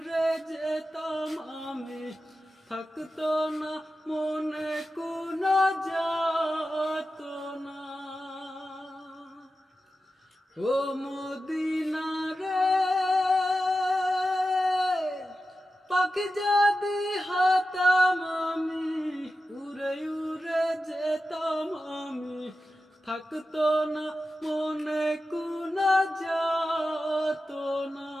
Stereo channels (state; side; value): normal; both; correlation 0.92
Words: যেতাম আমি, থাকতো না মনে কোনো যাতনা। ও মদিনা রে, পাখি যদি হতাম আমি, উড়ে উড়ে যেতাম আমি, থাকতো না মনে কোনো যাতনা।